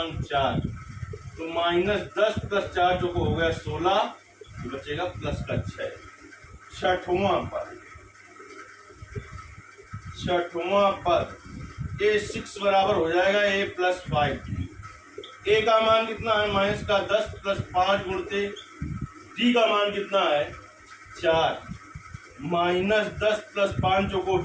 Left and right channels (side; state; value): both; identical; correlation 1.00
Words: 4, तो -10 प्लस 4 जो हो गया 16, तो बचेगा प्लस का 6। छठवां पद A6 बराबर हो जाएगा A प्लस 5D। A का मान कितना है? माइनस का 10 प्लस 5 गुणते D का मान कितना है? 4, -10 प्लस 5 जो को